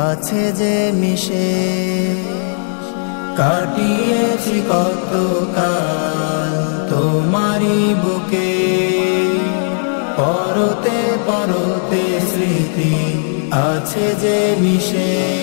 আছে যে মিশে। কাটিয়েছি কত কাল তোমারি বুকে, পরতে পরতে স্মৃতি আছে যে মিশে।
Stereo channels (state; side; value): silent; right; digital silence